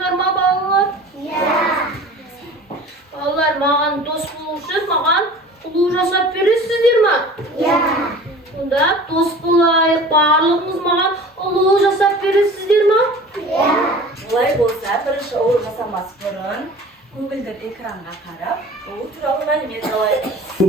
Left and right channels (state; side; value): normal; both; correlation 0.42